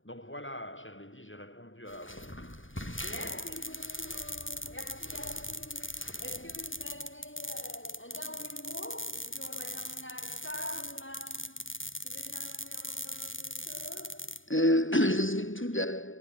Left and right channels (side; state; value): right; late; 0.57 ms